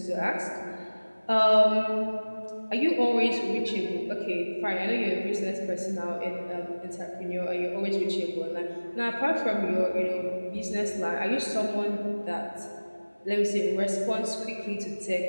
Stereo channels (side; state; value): both; inverted; correlation -1.00